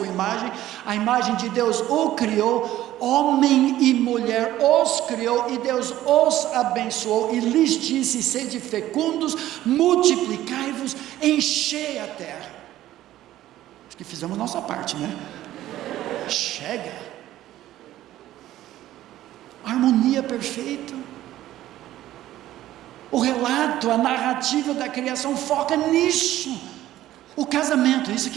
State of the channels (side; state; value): left; quieter; 14.0 dB